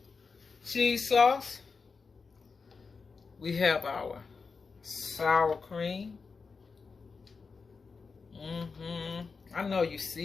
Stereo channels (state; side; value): quieter; right; 4.8 dB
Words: cheese sauce. We have our sour cream. I know you